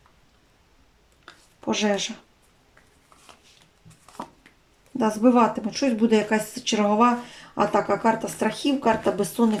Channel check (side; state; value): both; identical; correlation 1.00